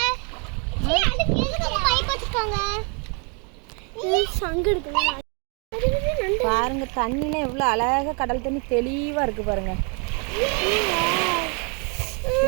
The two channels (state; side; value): quieter; left; 36.5 dB